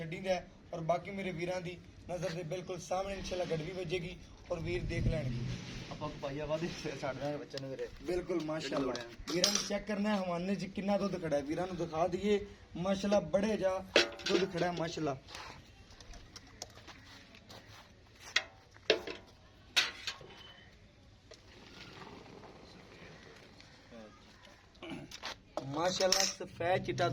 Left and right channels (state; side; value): identical; both; correlation 1.00